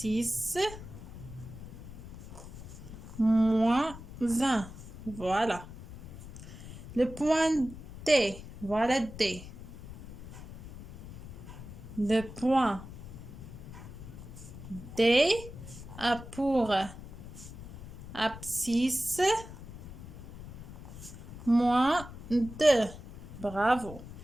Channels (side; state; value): left; noise; rumble, 13 dB below the sound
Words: moins 1. Voilà. Le point D, voilà D. Le point D a pour abscisse moins 2. Bravo.